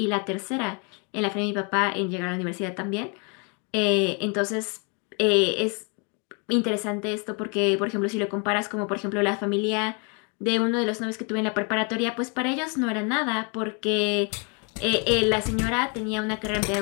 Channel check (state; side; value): quieter; right; 35.8 dB